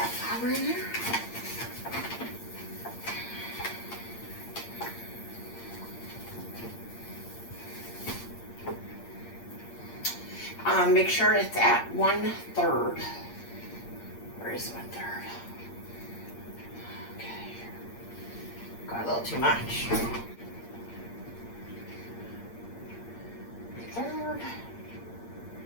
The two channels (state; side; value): late; right; 8.6 ms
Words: flour in there. Make sure it's at 1/3. Where is 1/3? Okay. Got a little too much. 1/3.